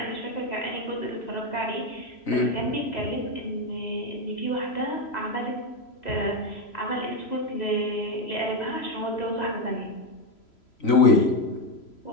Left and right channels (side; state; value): right; late; 3.0 ms